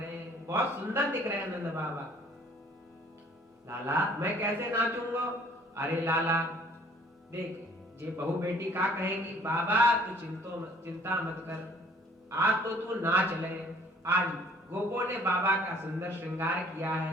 हैं। बहुत सुंदर दिख रहे हैं नंद बाबा। लाला मैं कैसे नाचूंगा। अरे लाला देख, ये बहू बेटी का कहेंगी, बाबा तू चिंता मत कर, आज तो तू नाच ले। आज गोपो ने बाबा का सुंदर श्रृंगार किया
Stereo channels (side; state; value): both; normal; correlation 0.56